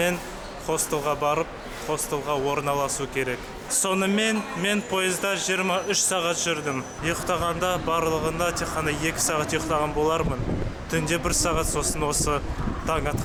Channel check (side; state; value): both; identical; correlation 1.00